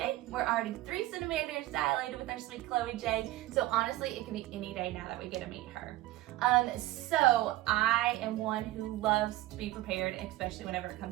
We're already 3 centimeters dilated with our sweet Chloe J. So honestly, it can be any day now that we get to meet her. So I am one who loves to be prepared, especially whenever it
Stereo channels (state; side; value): quieter; left; 16.9 dB